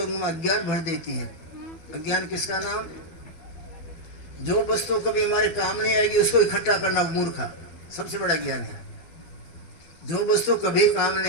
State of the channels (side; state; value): right; late; 12 ms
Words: में अज्ञान भर देती है। अज्ञान किसका नाम? जो वस्तु कभी हमारे काम नहीं आएगी उसको इकट्ठा करना मूर्खा सबसे बड़ा ज्ञान है। जो वस्तु कभी काम